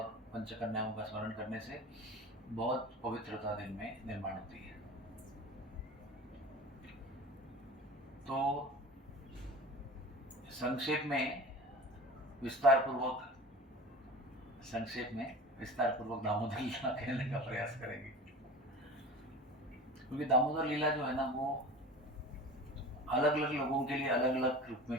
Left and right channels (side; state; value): both; normal; correlation 0.36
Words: पंचकन्याओं का स्मरण करने से बहुत पवित्रता दिन में निर्माण होती है। तो संक्षेप में विस्तार पूर्वक दामोदर लीला कहने का प्रयास करेंगे। क्योंकि दामोदर लीला जो है ना, वो अलग अलग लोगों के लिए अलग अलग रूप